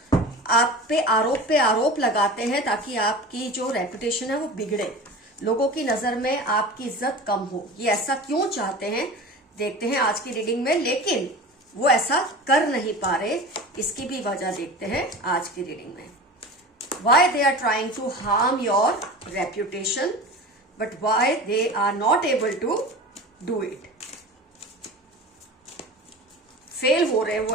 आप पे आरोप लगाते हैं, ताकि आपकी जो रेपुटेशन है वो बिगड़े, लोगों की नजर में आपकी इज्जत कम हो। ये ऐसा क्यों चाहते हैं देखते हैं आज की रीडिंग में, लेकिन वो ऐसा कर नहीं पा रहे, इसकी भी वजह देखते हैं आज की रीडिंग में। Why they are trying to harm your reputation but why they are not able to do it. Fail हो रहे वो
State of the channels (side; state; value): both; normal; correlation 0.34